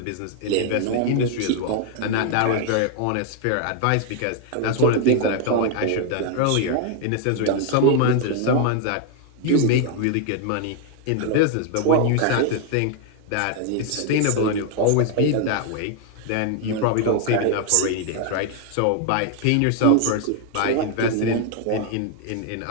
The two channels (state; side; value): different; both; correlation 0.00